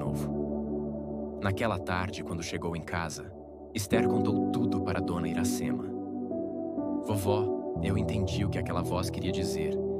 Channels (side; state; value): both; identical; correlation 1.00